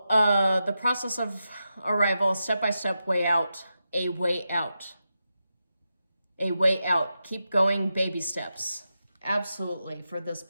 the process of arrival, step-by-step way out, a way out. A way out. Keep going, baby steps. Absolutely, for this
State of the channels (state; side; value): inverted; both; correlation -0.89